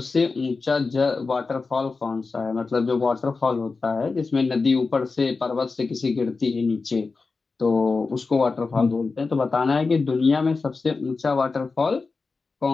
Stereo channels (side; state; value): right; quieter; 4.2 dB